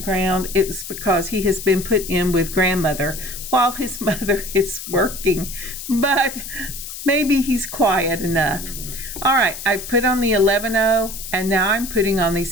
it's because he has been put in with grandmother while his mother is working, but maybe he's quiet enough. All right, I put on the 11-0, and now I'm putting on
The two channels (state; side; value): noise; left; hiss, 10 dB below the sound